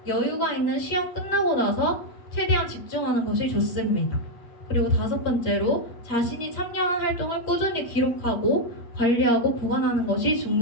여유가 있는 시험 끝나고 나서 최대한 집중하는 것이 좋습니다. 그리고 5번째로 자신이 참여한 활동을 꾸준히 기록하고 관리하고 보관하는 것이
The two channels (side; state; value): right; late; 8.6 ms